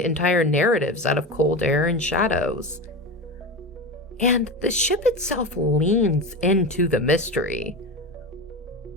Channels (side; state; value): both; normal; correlation 0.23